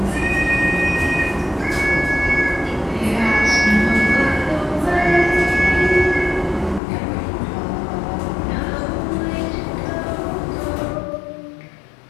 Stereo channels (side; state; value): right; drops out; at 6.8 s